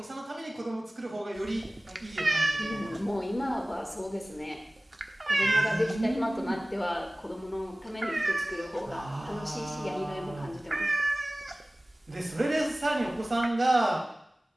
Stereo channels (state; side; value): normal; both; correlation 0.98